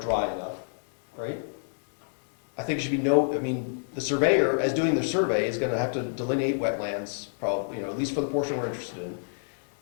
enough, right? I think it should be the surveyor, as doing the survey, is gonna have to delineate wetlands, probably, at least for the portion we're interested in.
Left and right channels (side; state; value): right; silent; 60 dB below the other